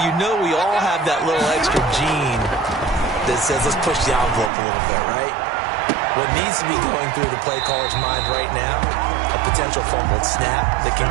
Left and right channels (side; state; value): left; drops out; at 4.5 s